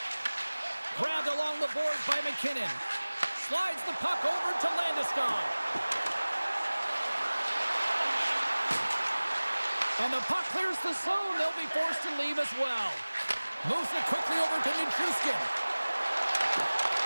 Grabbed along the boards by McKinnon. Slides the puck over to Landeskog. And the puck clears the zone. They'll be forced to leave as well. Moves it quickly over to Nichushkin.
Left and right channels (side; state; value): both; inverted; correlation -1.00